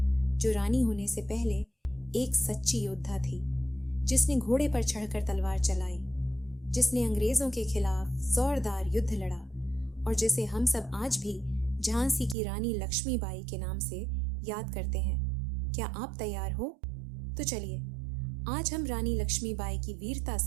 जो रानी होने से पहले एक सच्ची योद्धा थी, जिसने घोड़े पर चढ़कर तलवार चलाई, जिसने अंग्रेजों के खिलाफ जोरदार युद्ध लड़ा और जिसे हम सब आज भी झांसी की रानी लक्ष्मीबाई के नाम से याद करते हैं। क्या आप तैयार हो? तो चलिए आज हम रानी लक्ष्मीबाई की वीरता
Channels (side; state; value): left; drops out; at 12.4 s